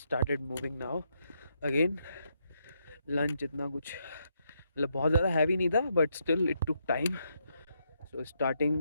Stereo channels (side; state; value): both; inverted; correlation -0.79